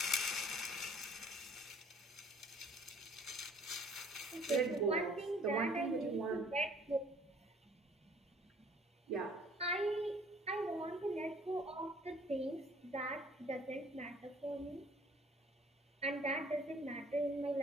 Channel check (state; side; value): normal; both; correlation 0.56